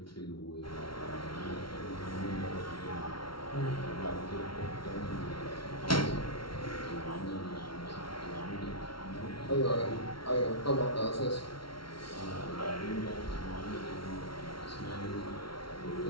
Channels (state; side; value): late; right; 0.74 ms